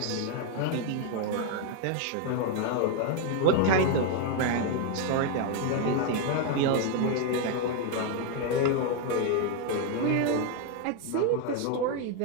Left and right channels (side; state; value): both; different; correlation 0.01